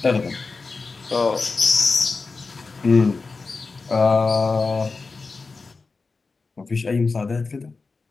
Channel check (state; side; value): quieter; right; 4.2 dB